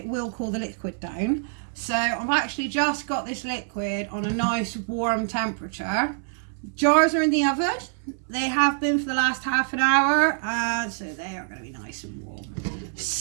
will cool the liquid down. So I've actually just got this liquid on a nice warm temperature. Jars are in the oven. They have been for the last half an hour, so they are going to be nice and warm.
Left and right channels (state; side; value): silent; left; 61 dB below the other